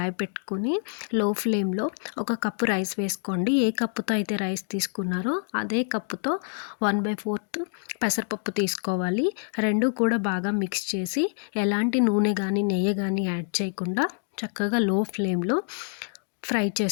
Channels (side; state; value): right; silent; 56 dB below the other